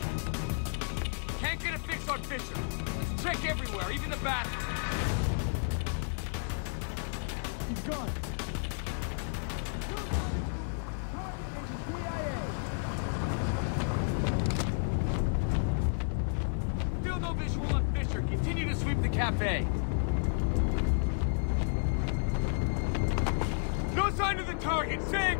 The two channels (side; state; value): right; silent; digital silence